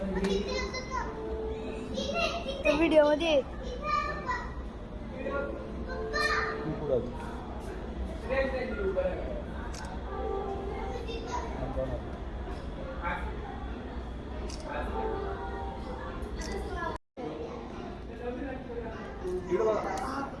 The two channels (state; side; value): identical; both; correlation 1.00